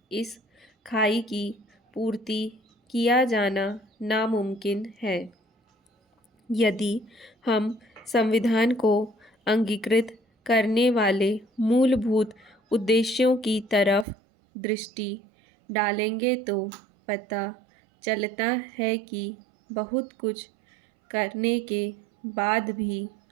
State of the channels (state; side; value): drops out; left; at 14.1 s